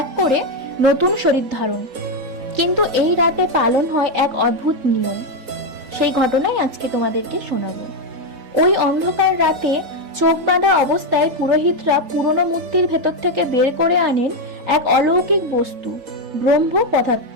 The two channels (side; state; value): left; late; 3.9 ms